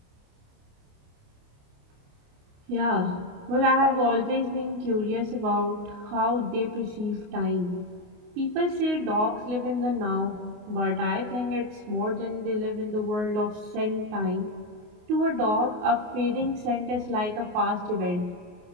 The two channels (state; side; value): late; left; 28 ms